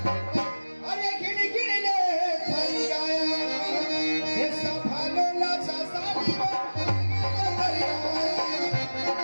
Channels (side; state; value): both; inverted; correlation -1.00